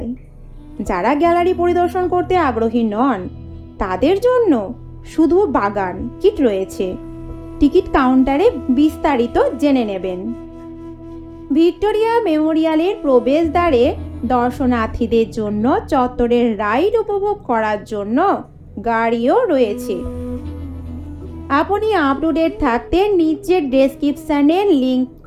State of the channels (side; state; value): both; identical; correlation 1.00